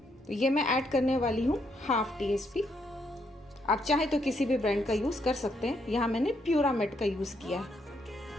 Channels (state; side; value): normal; both; correlation 0.75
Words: तो ये मैं ऐड करने वाली हूँ 1/2 टीस्पून। आप चाहे तो किसी भी ब्रांड का यूज़ कर सकते हैं, यहाँ मैंने प्यूरामेट का यूज़ किया है।